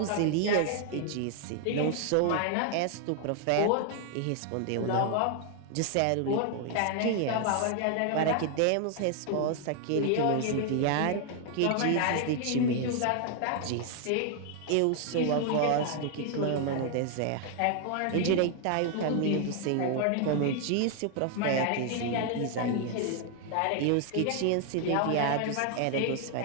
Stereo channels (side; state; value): both; different; correlation 0.00